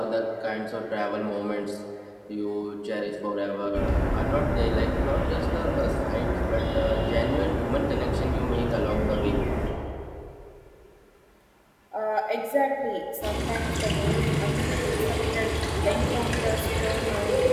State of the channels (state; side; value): identical; both; correlation 1.00